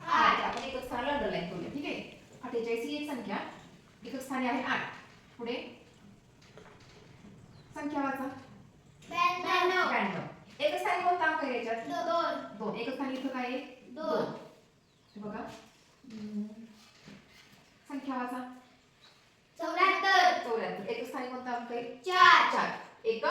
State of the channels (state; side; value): identical; both; correlation 1.00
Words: 8. आपण एकच स्थानाला अंडरलाईन करूया. ठीक आहे. 48 ही एक संख्या एकच स्थानी आहे 8. पुढे संख्या वाचा. 92. एकच स्थानी कोणता अंक आहे याच्यात? 2. एकच स्थानी इथं काय आहे? 2. बघा. संख्या वाचा. 74. एकच स्थानी कोणता अंक आहे? 4.